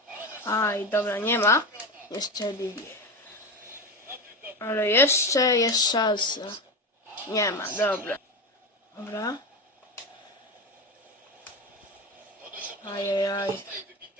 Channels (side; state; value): both; normal; correlation 0.20